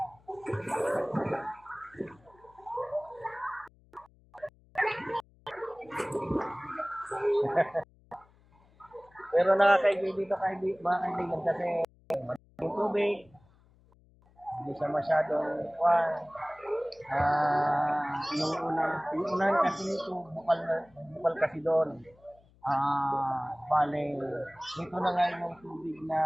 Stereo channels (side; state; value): left; noise; hum, 29 dB below the sound